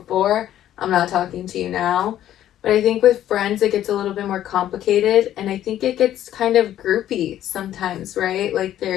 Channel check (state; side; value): quieter; right; 12.0 dB